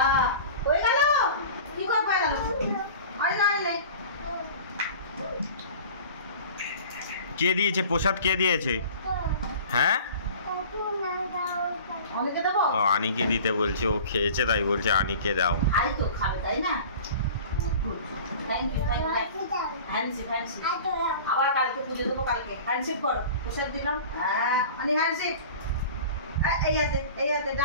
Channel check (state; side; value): inverted; both; correlation -0.40